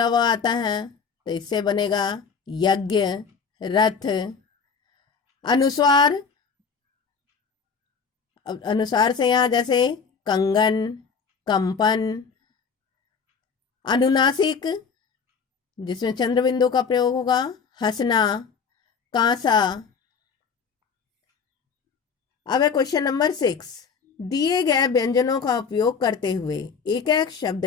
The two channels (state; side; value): quieter; right; 5.8 dB